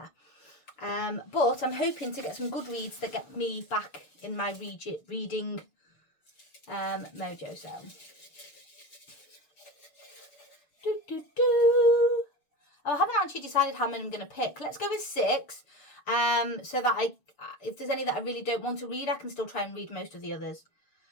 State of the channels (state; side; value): late; right; 6.8 ms